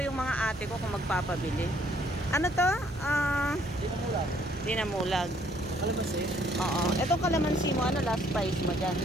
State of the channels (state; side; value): normal; both; correlation 0.64